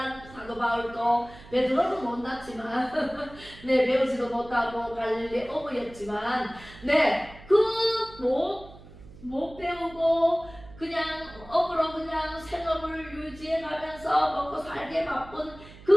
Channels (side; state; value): right; noise; hum, 19 dB below the sound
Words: 사도 바울도 베드로는 못났지만 네 배우지도 못하고 갈릴리 어부였지만 네 그 못 배우고 그냥 어부로 그냥 생업을 유지해 가면서 먹고 살게 바쁜